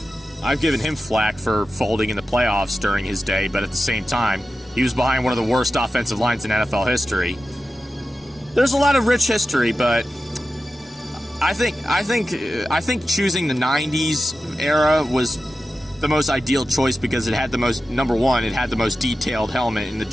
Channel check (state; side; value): normal; both; correlation 0.92